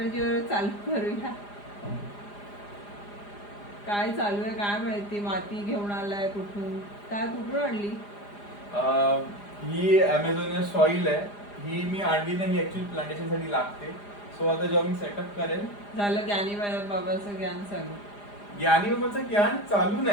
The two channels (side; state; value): right; late; 4.9 ms